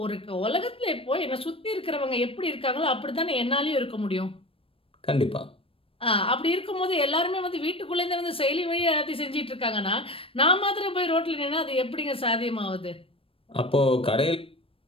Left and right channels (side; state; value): right; late; 0.27 ms